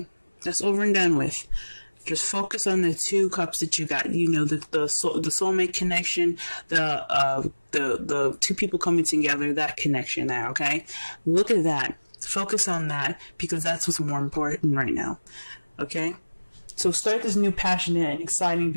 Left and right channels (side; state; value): both; inverted; correlation -1.00